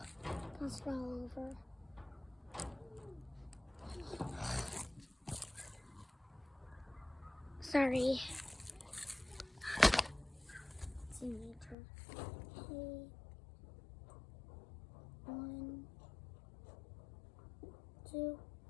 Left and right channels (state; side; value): drops out; right; at 11.8 s